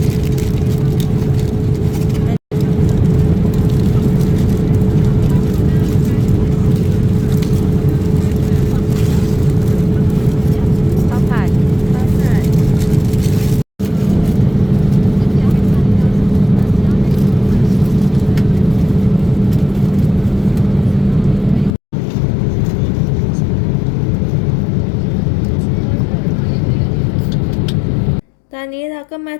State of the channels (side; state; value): right; drops out; at 21.8 s